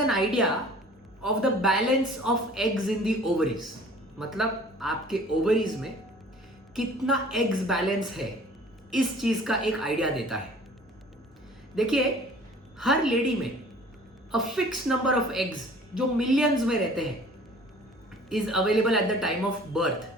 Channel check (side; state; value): both; normal; correlation 0.49